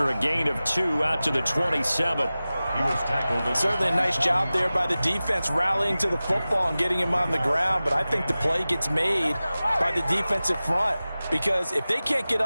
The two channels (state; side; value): inverted; both; correlation -0.96